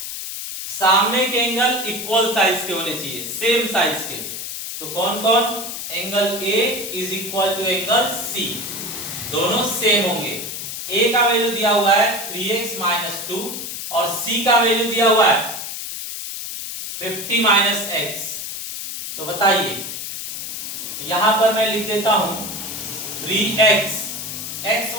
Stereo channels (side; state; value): left; noise; hiss, 7 dB below the sound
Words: सामने के एंगल इक्वल साइज के होने चाहिए, सेम साइज के। तो कौन कौन? Angle A is equal to angle C, दोनों सेम होंगे। ए का वैल्यू दिया हुआ है 3x - 2 और c का वैल्यू दिया हुआ है 50 - x। तो बताइए, यहां पर मैं लिख देता हूं 3x, x